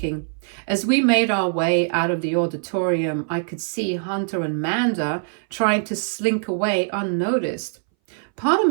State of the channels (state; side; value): silent; left; 61 dB below the other